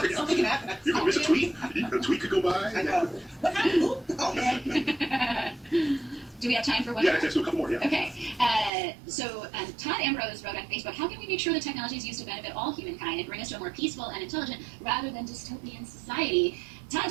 happen. You can miss a tweet. A tweet could go by. I know. What happened? Oh man. Do we have time for one? Yeah, let's do a couple more. Yeah. Okay. So Todd Ambrose wrote on Facebook, how can we make sure the technology is used to benefit all humankind and bring us to a more peaceful and intelligent rather than dystopian society? Todd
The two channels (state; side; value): drops out; left; at 8.7 s